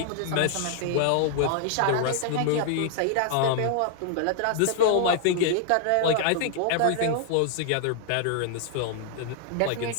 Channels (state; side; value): different; both; correlation -0.01